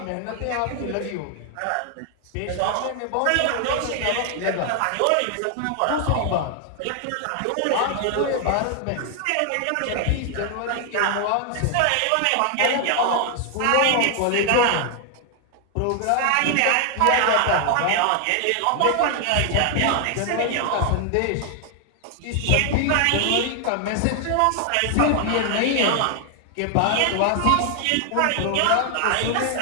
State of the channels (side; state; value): both; different; correlation 0.00